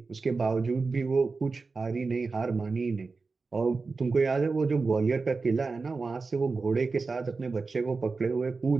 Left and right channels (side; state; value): left; quieter; 4.2 dB